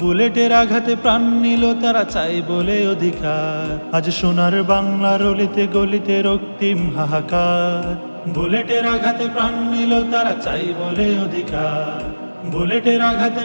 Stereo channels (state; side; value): inverted; both; correlation -1.00